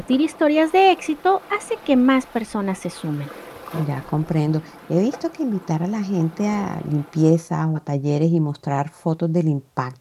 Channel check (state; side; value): identical; both; correlation 1.00